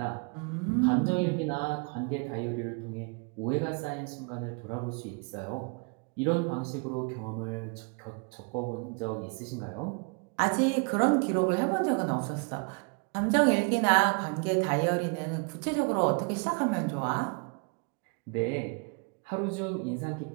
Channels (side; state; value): left; quieter; 35.2 dB